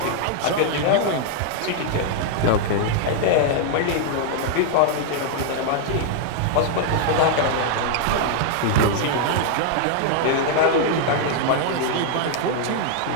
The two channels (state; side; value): different; both; correlation 0.00